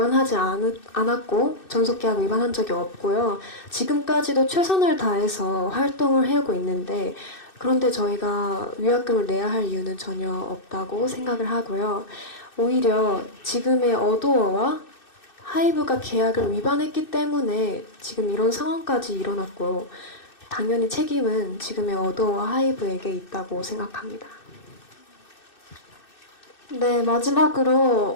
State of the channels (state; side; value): late; right; 2.6 ms